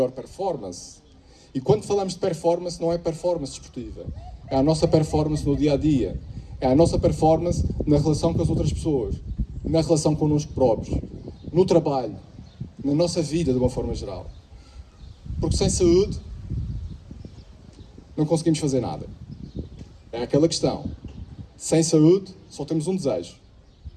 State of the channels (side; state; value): both; identical; correlation 1.00